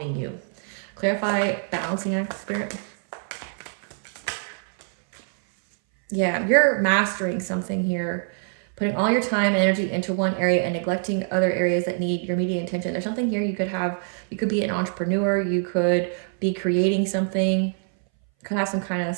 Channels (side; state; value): left; silent; 60 dB below the other